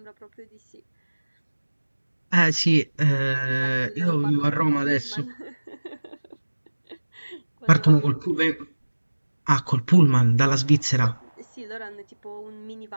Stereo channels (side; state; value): both; inverted; correlation -1.00